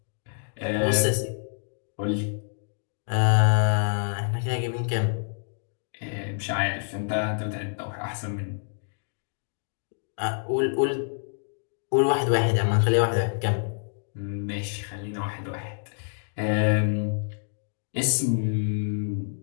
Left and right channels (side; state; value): right; silent; digital silence